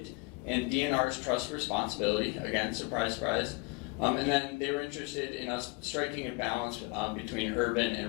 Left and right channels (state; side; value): quieter; right; 28.4 dB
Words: and DNR's trust responsibility. Again, surprise, surprise. And then they were interested in us striking a balance between urban